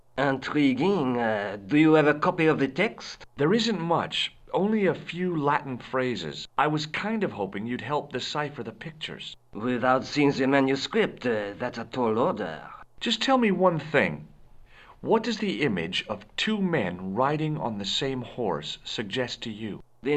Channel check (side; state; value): both; identical; correlation 1.00